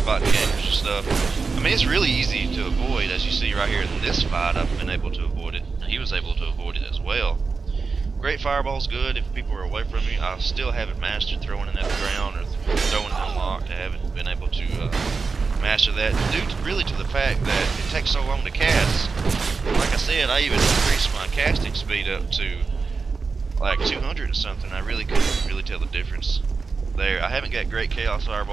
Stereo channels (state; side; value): quieter; left; 4.6 dB